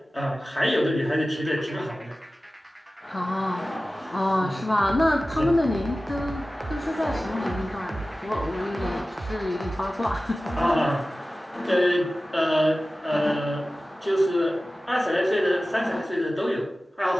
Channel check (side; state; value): both; normal; correlation 0.96